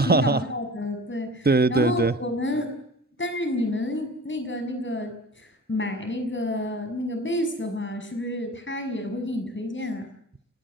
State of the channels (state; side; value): normal; both; correlation 0.40